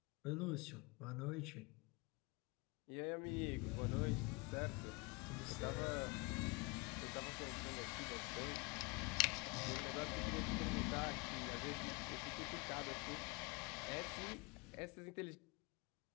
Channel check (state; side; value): quieter; right; 27.7 dB